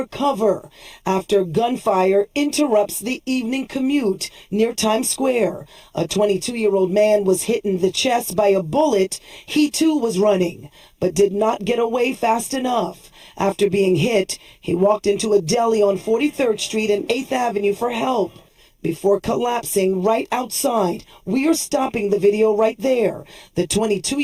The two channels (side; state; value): both; identical; correlation 1.00